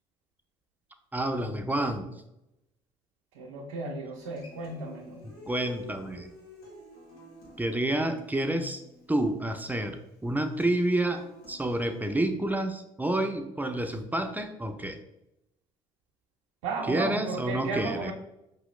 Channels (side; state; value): both; normal; correlation 0.74